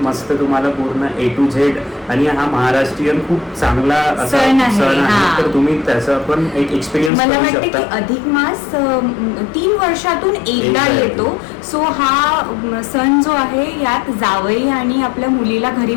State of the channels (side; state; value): right; drops out; at 7.1 s